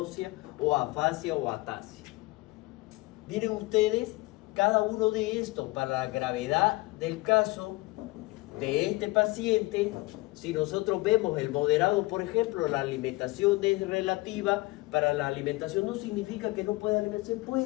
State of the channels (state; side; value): quieter; right; 22.4 dB